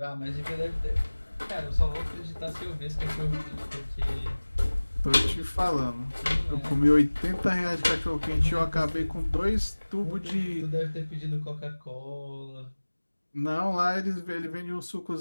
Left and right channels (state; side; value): inverted; both; correlation -1.00